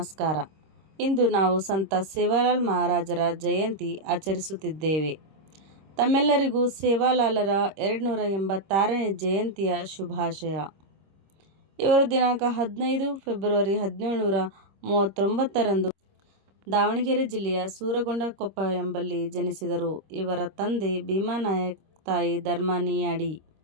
ಇಂದು ನಾವು ಸಂತ ಸೇವಾಲಾಲ್ ಮಹಾರಾಜರ ಜಯಂತಿ ಆಚರಿಸುತ್ತಿದ್ದೇವೆ. ತಮ್ಮೆಲ್ಲರಿಗೂ ಸೇವಾಲಾಲರ 286ನೇ ಜಯಂತಿಯ ಶುಭಾಶಯ. ಇವರು ದಿನಾಂಕ 15 ಫೆಬ್ರವರಿ 1739ರಂದು ದಾವಣಗೆರೆ ಜಿಲ್ಲೆಯ ಸೂರಗೊಂಡನಕೊಪ್ಪ ಎಂಬಲ್ಲಿ ಜನಿಸಿದರು. ಇವರ ತಂದೆ ಭೀಮಾನಾಯಕ್, ತಾಯಿ ಧರ್ಮಾನಿಯಾಡಿ.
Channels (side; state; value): left; late; 26 ms